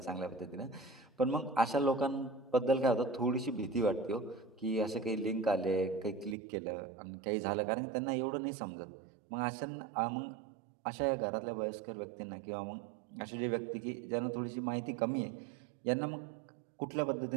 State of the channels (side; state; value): left; drops out; at 6.4 s